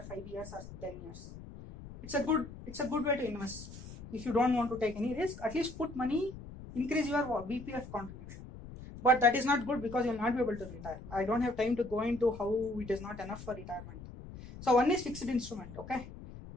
5 years or 10 years. It's a good way to invest. If you don't want to take any risk, at least put money, increase your BPF contribution. But that is not good because you will not be able to retire. I don't have time to go into how it is not enough for retirement. So one is fixed instrument. Okay,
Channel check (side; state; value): left; noise; rumble, 14 dB below the sound